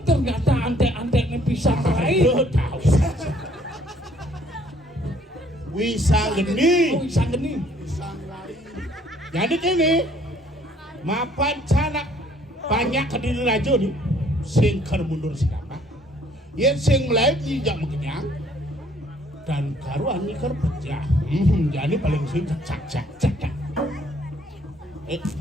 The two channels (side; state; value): both; normal; correlation 0.61